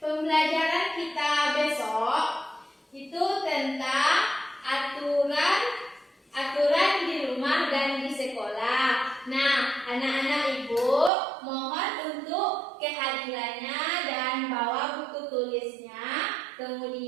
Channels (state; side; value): drops out; left; at 11.1 s